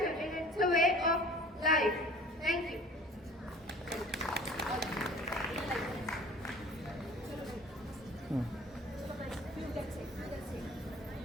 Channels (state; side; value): normal; both; correlation 0.46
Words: and it's a way of life. Thank you.